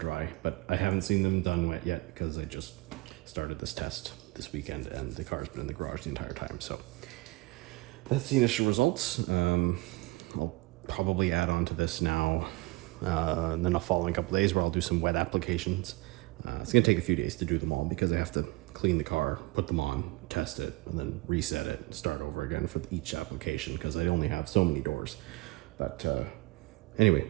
but I haven't seen them done wet yet because I just started this test this weekend and the car's been in the garage the entire time. So that's the initial results. I'll probably add on to this now, and then I'll follow in a couple days where I'll do some wet applications. It's gonna take a few days to do them all because I have to clean the car, put them on, test it, and then reset it, start over again for each application because I only have so many doors. But anyway,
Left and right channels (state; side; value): quieter; left; 22.9 dB